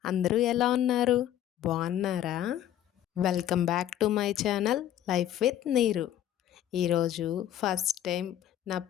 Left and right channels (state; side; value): quieter; right; 11.7 dB